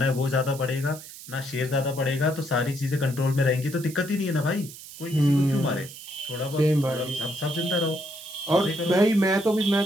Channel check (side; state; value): right; noise; hiss, 15 dB below the sound